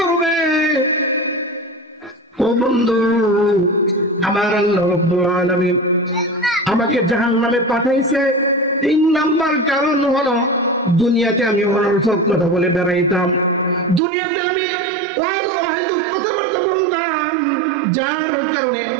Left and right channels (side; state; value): left; drops out; at 14.0 s